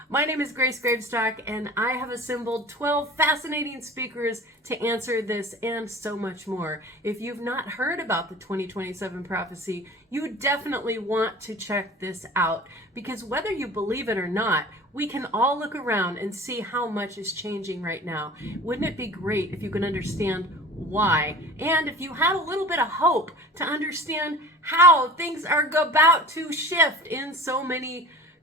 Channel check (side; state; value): both; normal; correlation 0.40